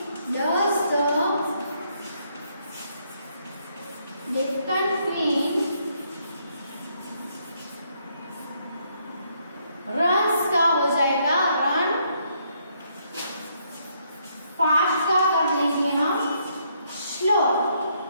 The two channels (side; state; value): both; inverted; correlation -0.72